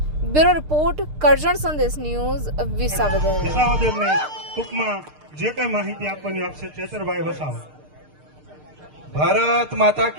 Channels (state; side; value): late; left; 6.6 ms